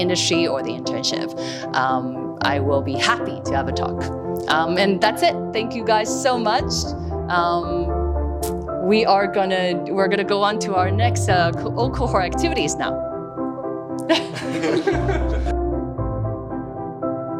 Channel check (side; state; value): both; identical; correlation 1.00